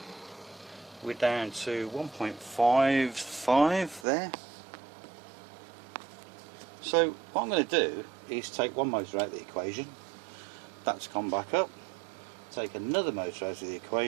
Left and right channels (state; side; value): drops out; left; at 4.0 s